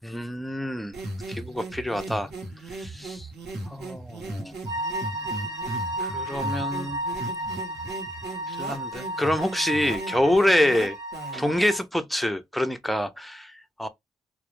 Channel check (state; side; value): normal; both; correlation 0.78